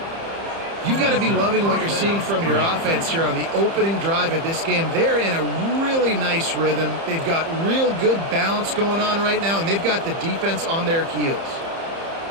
You've got to be loving what you're seeing from your offense here on the opening drive of this game. They're in a really nice rhythm. They've got real good balance going on right now, and they've got the defense on their heels.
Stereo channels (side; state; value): left; late; 30 ms